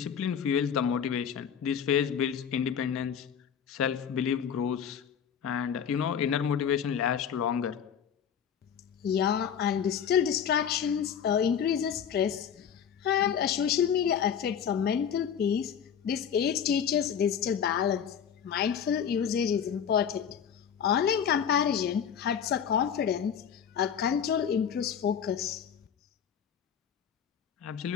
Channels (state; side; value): quieter; right; 8.0 dB